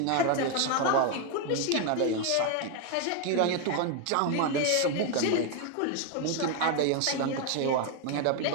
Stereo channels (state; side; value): different; both; correlation 0.01